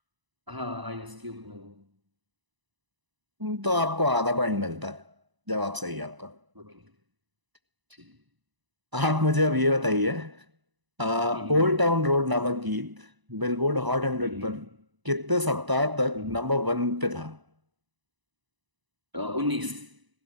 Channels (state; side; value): late; left; 1.0 ms